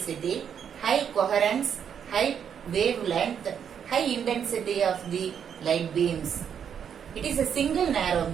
high coherence, high wavelength, high intensity of the light beams. It is a single narrow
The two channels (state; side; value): quieter; left; 8.0 dB